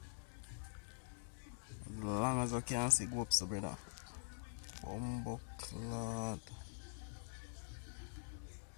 As long as I can see, go up, so, brother. Bumbo clot.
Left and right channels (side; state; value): right; silent; digital silence